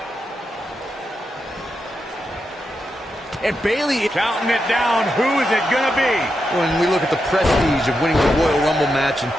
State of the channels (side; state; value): both; normal; correlation 0.86